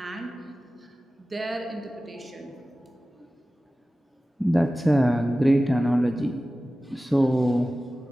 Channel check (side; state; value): both; normal; correlation 0.96